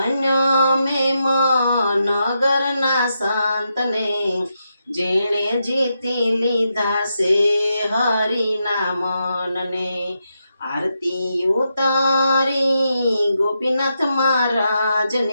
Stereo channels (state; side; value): inverted; both; correlation -0.84